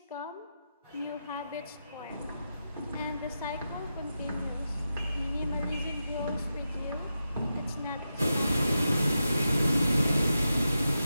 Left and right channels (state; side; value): inverted; both; correlation -0.89